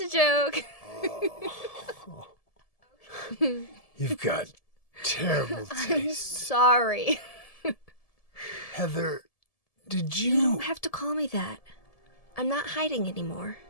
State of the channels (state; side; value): late; right; 1.7 ms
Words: a joke. You've got terrible I'm taste. sorry. Heather, did You don't have to call me that. I'm not hiding anymore.